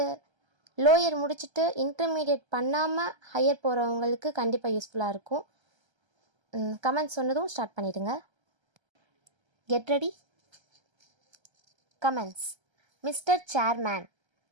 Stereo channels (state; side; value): late; left; 1.3 ms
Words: லோயர் முடிச்சுட்டு இன்டர்மீடியட் பண்ணாமல் ஹையர் போகிறவங்களுக்கு கண்டிப்பாக யூஸ்ஃபுல்லாக இருக்கும். கமெண்ட்ஸ் சொன்னதும் ஸ்டார்ட் பண்ணிடுங்க. Get ready. Comments. Mister chairman,